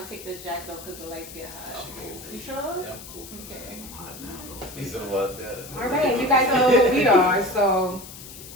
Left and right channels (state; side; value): noise; left; hiss, 15 dB below the sound